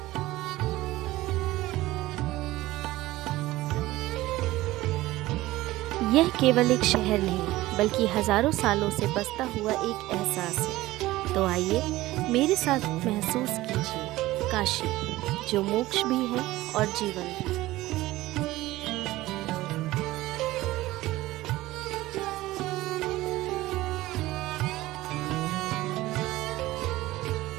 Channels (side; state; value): left; quieter; 17.5 dB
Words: यह केवल एक शहर नहीं बल्कि हजारों सालों से बसता हुआ एक एहसास है। तो आइए मेरे साथ महसूस कीजिए काशी, जो मोक्ष भी है और जीवन भी।